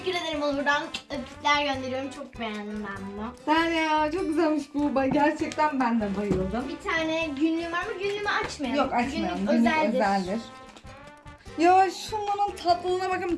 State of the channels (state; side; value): identical; both; correlation 1.00